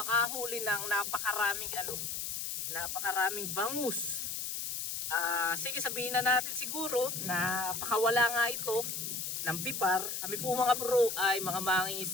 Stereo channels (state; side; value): noise; left; hiss, 3 dB below the sound